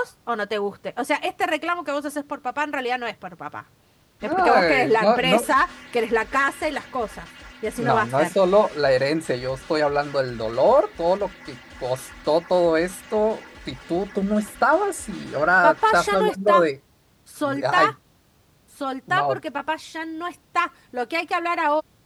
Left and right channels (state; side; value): identical; both; correlation 1.00